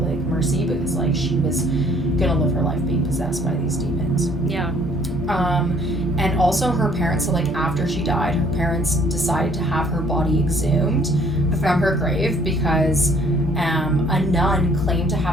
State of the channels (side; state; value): both; normal; correlation 0.59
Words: like mercy because, like, she was gonna live her life being possessed by these demons. Yeah. And also her parents, so, like, after she died, her parents decided to have her body exhumed from her grave because a nun claimed to